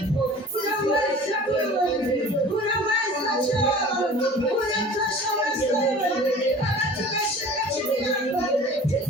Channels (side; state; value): both; normal; correlation 0.43